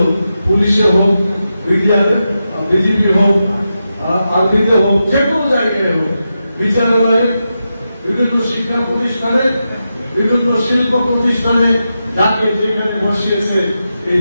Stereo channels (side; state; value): both; inverted; correlation -0.89